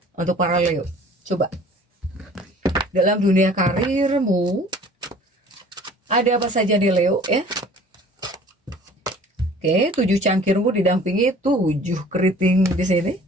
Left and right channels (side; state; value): both; normal; correlation 0.49